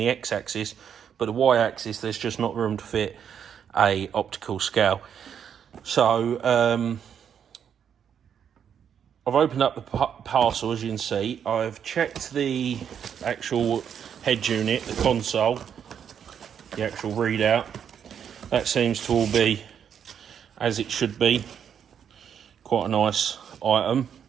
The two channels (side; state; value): left; quieter; 8.2 dB